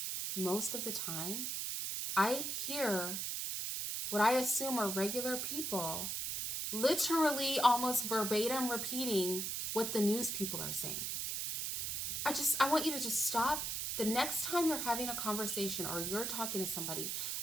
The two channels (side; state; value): right; noise; hiss, 2 dB below the sound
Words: most of the time, I hear what I assume are regular people literally almost verbatim repeating what the news people are saying. I want you to just stop. The next time you're having a conversation or you're talking to somebody,